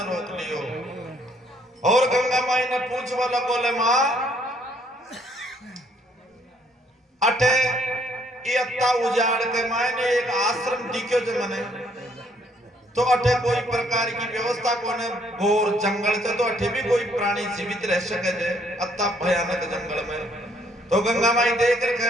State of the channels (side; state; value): both; normal; correlation 0.66